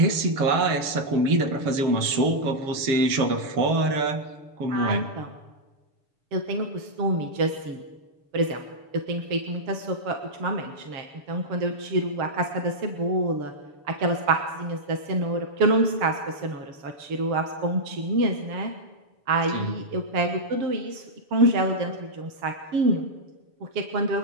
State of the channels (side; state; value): left; late; 7.0 ms